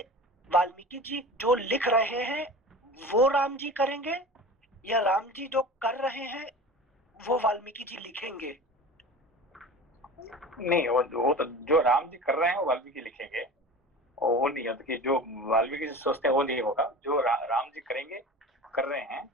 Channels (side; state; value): both; normal; correlation 0.35